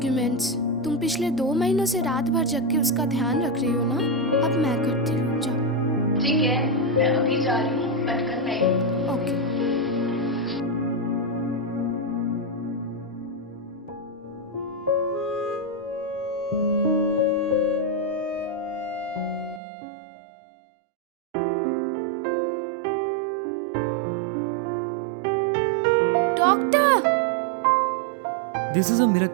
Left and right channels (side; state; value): left; drops out; at 19.6 s